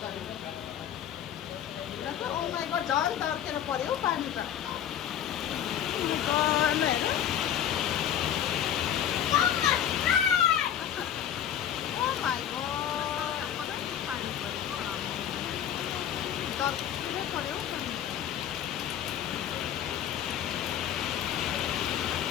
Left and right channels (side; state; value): right; quieter; 9.9 dB